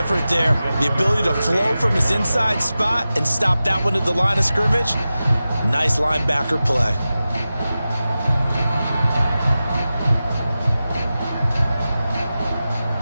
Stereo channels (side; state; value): both; inverted; correlation -0.94